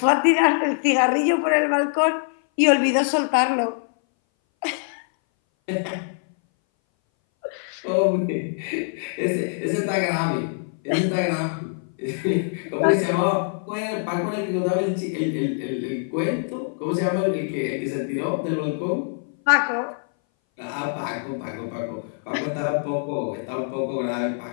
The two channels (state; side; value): silent; right; 60 dB below the other